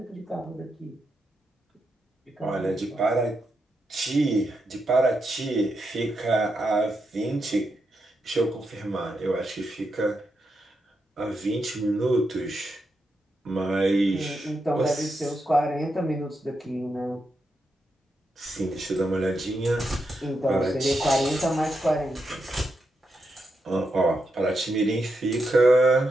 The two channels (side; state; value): both; normal; correlation 0.84